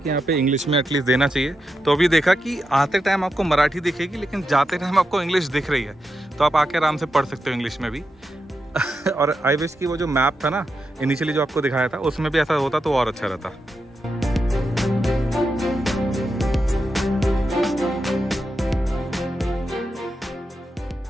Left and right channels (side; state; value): both; normal; correlation 0.87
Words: यहाँ पे इंग्लिश में एटलीस्ट देना चाहिए, तो अभी देखा कि आते टाइम आपको मराठी दिखेगी, लेकिन जाते टाइम आपको इंग्लिश दिख रही है। तो आप आके आराम से पढ़ सकते हो इंग्लिश में भी। और आई विश कि वो जो मैप था ना इनिशियली जो आपको दिखाया था, उसमें भी ऐसा होता तो और अच्छा रहता।